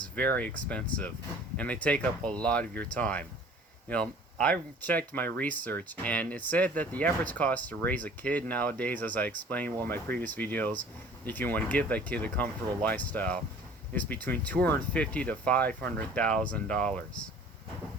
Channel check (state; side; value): normal; both; correlation 0.49